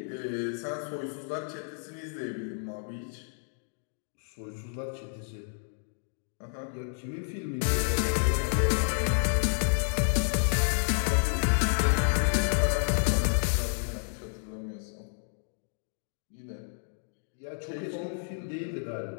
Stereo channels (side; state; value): right; silent; digital silence